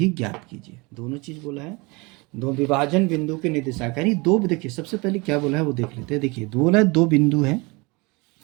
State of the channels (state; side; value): quieter; left; 26.6 dB